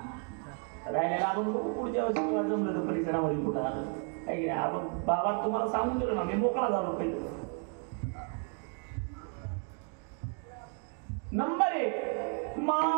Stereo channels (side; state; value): left; quieter; 39.3 dB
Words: राहिलेला आपण पुढच्या वर्षी किंवा जमलं तर परिसरामध्ये कुठं आलं काही नाही. आपण बाबा तुम्हाला सांगून दिलं ना, मी मोकळा झालो पहिले. नंबर 1